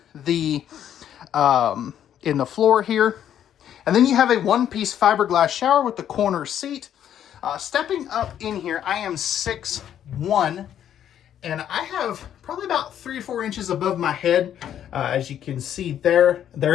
the floor here. And then you have a one-piece fiberglass shower with the corner seat. Stepping up in here, I am 6'1", and I have probably about 3 or 4 inches above my head. As you can see there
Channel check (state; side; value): quieter; right; 10.1 dB